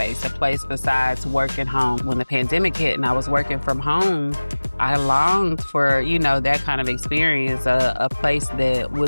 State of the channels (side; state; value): both; inverted; correlation -1.00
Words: a place besides work and home. When the pandemic hit and I was working from home, I longed for, that kind of experience, a place that